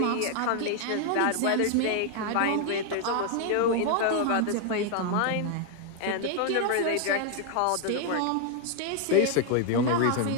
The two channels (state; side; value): different; both; correlation 0.00